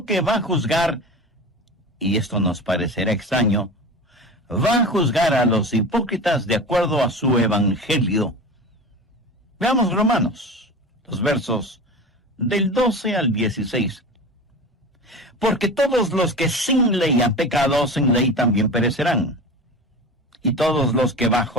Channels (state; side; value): normal; both; correlation 0.31